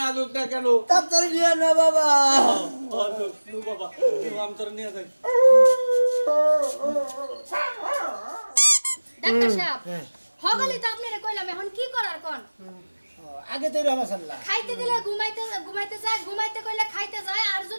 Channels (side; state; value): both; inverted; correlation -1.00